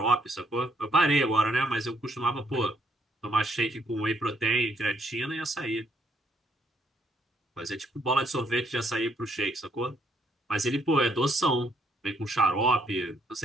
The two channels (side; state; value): both; normal; correlation 0.71